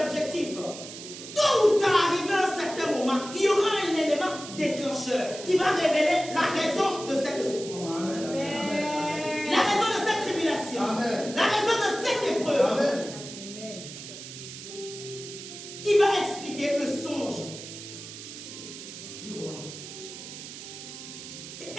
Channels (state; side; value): noise; right; hiss, 12 dB below the sound